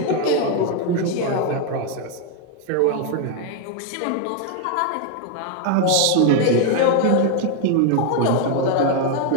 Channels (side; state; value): both; different; correlation 0.01